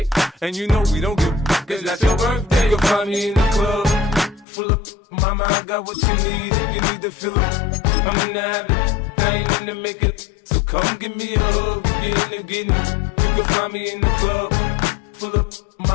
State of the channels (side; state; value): right; drops out; at 4.5 s